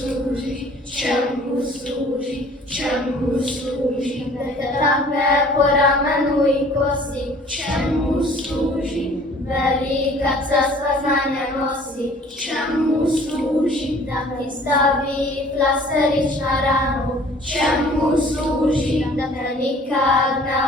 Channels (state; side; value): normal; both; correlation 0.52